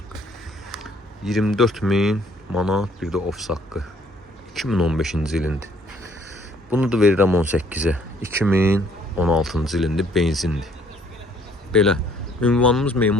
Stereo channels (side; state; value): both; normal; correlation 0.62